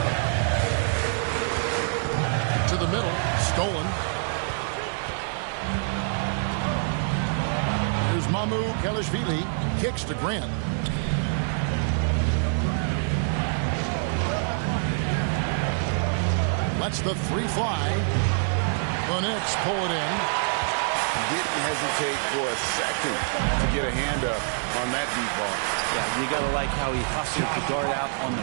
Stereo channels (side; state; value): left; silent; 61 dB below the other